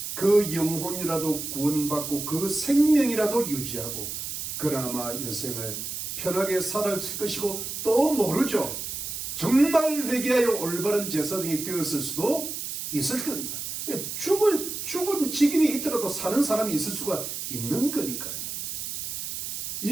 그 영혼이라도 구원받고 그 생명이라도 유지하고 그나마 여생을 편하게 살았을 것이고, 또 모르죠. 정말 회개하여 올바른 제사장이 되었을 수도 있을 겁니다. 죽은 직임이 있더라도 사는 사람이 있을 수가 있는 거니까요.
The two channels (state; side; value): noise; right; hiss, 5 dB below the sound